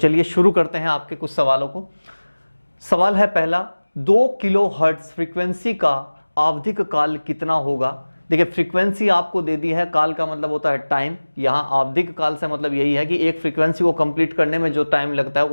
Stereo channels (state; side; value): inverted; both; correlation -1.00